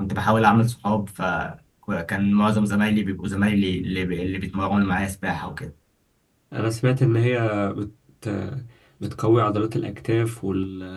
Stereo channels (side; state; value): both; identical; correlation 1.00